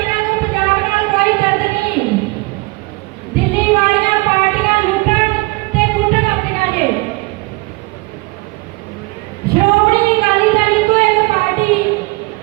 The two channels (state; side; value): quieter; left; 24.5 dB